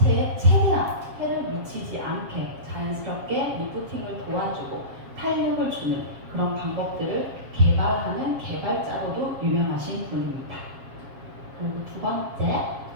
최대한 해를 미치지 않게 자연스럽게 리프팅을 도와주고 탄력을 주는 그런 방법들을 개발하는 개발자로도 유명하신 분입니다. 그리고 두 번째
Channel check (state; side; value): late; left; 7.4 ms